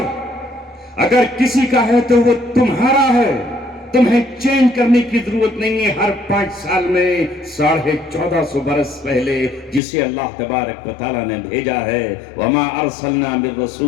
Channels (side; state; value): right; drops out; at 9.8 s